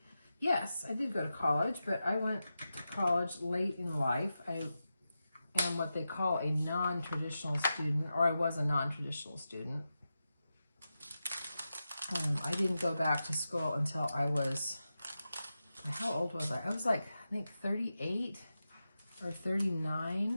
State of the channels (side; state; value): both; inverted; correlation -0.91